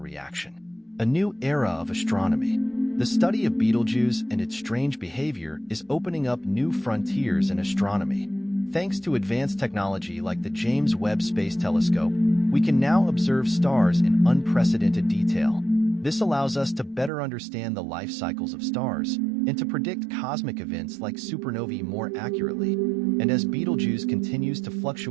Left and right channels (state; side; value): drops out; left; at 17.1 s